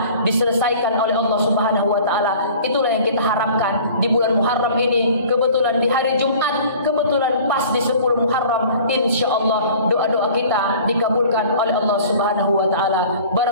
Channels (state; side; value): inverted; both; correlation -0.46